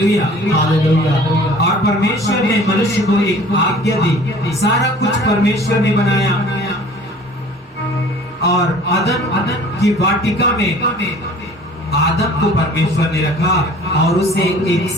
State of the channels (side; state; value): both; normal; correlation 0.48